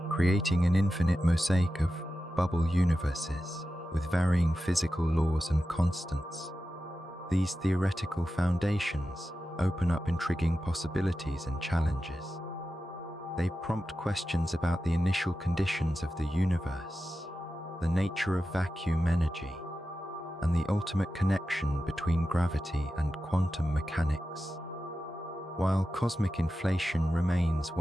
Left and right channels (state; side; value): normal; both; correlation 0.92